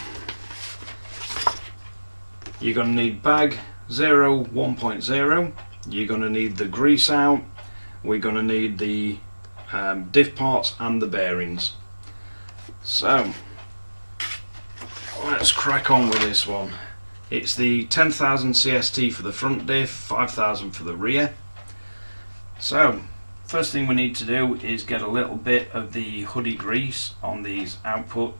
you're going to need bag 0 1.0, you're going to need the grease out, we're going to need the diff parts and the bearings. So let's crack on with this one. It's the 10,000 CST for the front diff, 5,000 for the rear. So first thing we need to do is get a little bit of the hoodie grease on these output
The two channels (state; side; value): inverted; both; correlation -1.00